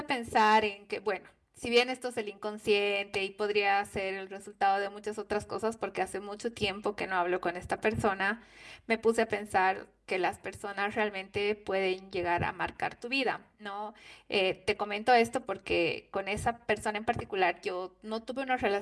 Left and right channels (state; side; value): identical; both; correlation 1.00